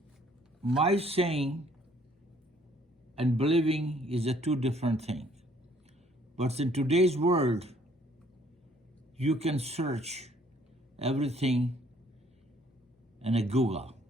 my saying and believing is a two different things. But in today's world, you can search everything in a Google.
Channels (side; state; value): both; normal; correlation 0.62